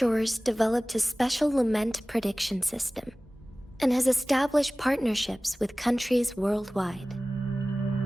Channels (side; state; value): both; normal; correlation 0.98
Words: developed a special lament prediction system and has established partnerships with countries worldwide.